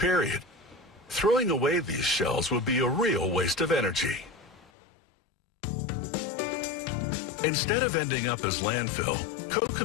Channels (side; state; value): right; drops out; at 4.7 s